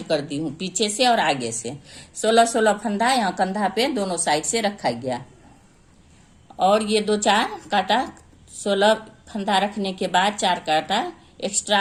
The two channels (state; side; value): identical; both; correlation 1.00